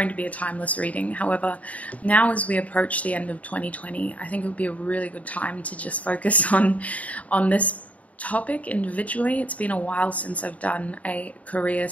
to be a timeless reading. However, now as we approach the end of 2020, I think it would be a really good time to just focus on this topic individually. It's been a while since I've done a career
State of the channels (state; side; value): late; right; 0.069 ms